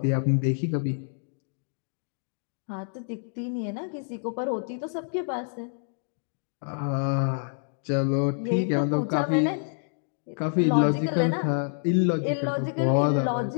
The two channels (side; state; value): right; silent; digital silence